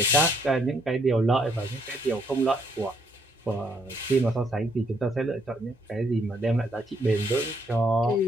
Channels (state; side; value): normal; both; correlation 0.71